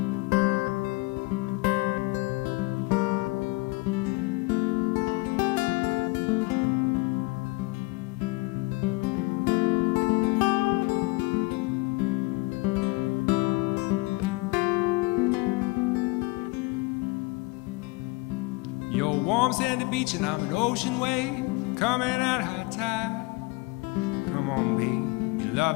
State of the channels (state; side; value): quieter; right; 24.8 dB